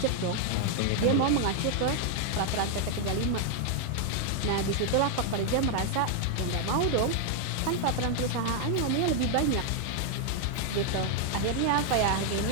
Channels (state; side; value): different; both; correlation 0.00